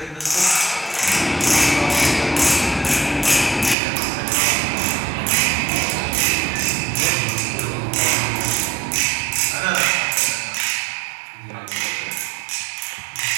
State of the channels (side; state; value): left; drops out; at 3.8 s